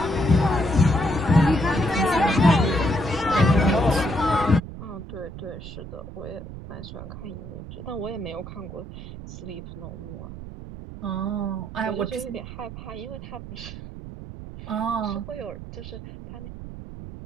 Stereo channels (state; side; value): noise; right; rumble, 12 dB below the sound